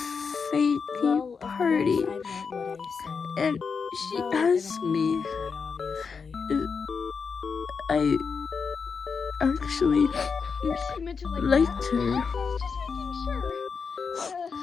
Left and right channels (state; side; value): quieter; right; 5.5 dB